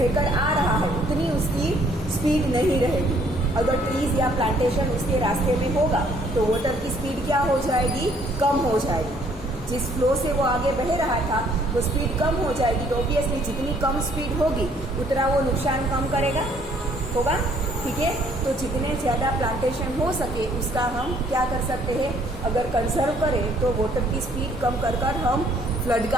आ रहा है उतनी उसकी स्पीड नहीं रहेगी। अगर ट्रीज या प्लांटेशन उसके रास्ते में होगा तो वाटर की स्पीड क्या हो जाएगी, कम हो जाएगी। जिस फ्लो से वो आगे बह रहा था वो स्पीड कम हो जाएगी, तो ऑब्वियसली जितनी कम स्पीड होगी उतना वो नुकसान कम करेगा होगा। ठीक है, तो जितने ज़्यादा प्लांटेशन हो सके उसका हम क्या कर सकते हैं, अगर कंजर्व करें तो वाटर की स्पीड कम कर हम फ्लड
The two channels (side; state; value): both; normal; correlation 0.63